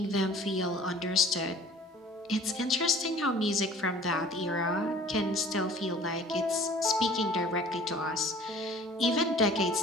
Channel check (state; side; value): normal; both; correlation 0.48